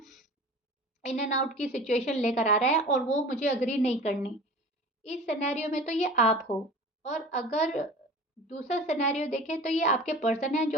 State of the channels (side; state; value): both; normal; correlation 0.39